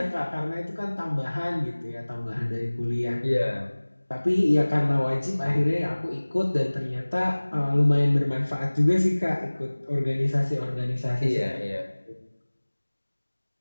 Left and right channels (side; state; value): both; inverted; correlation -1.00